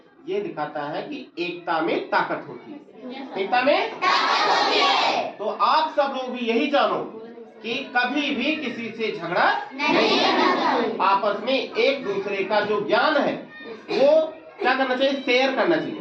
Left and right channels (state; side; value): identical; both; correlation 1.00